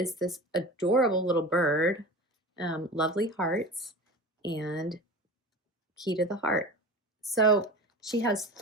this adorable little bird, lovely hearts, and Key to the Heart. So she has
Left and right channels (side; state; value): both; normal; correlation 0.33